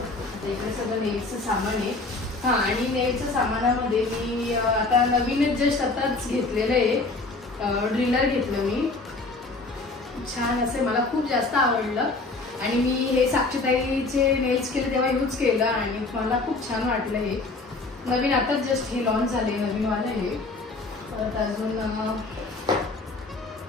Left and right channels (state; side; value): quieter; right; 3.4 dB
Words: इकडे सगळं नेलचं सामान आहे. हां, आणि नेलच्या सामानामध्ये मी आता नवीनच जस्ट आताच घेतलेलं आहे ड्रिलर घेतलं मी. छान असे, मला खूप जास्त आवडलं. आणि मी हे साक्षीताईचे नेल्स केले तेव्हा यूज केलं आणि मला खूप छान वाटलं. हे नवीन आताच जस्ट हे लॉन्च झाले, नवीनवालं हे. परत अजून